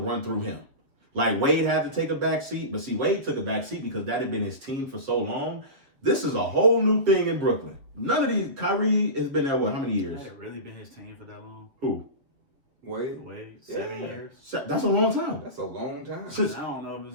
through him. Like Wade had to take a back seat, but see, Wade took a back seat because that had been his team for so long. This is a whole new thing in Brooklyn. None of these. Kyrie has been there, what, how many years? Has it really been his team for that long? Who? Wade? 7 years? That's a long time. That's a long time. I don't know if it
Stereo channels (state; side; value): late; left; 7.4 ms